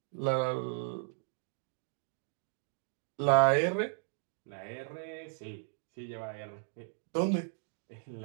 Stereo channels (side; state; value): left; silent; digital silence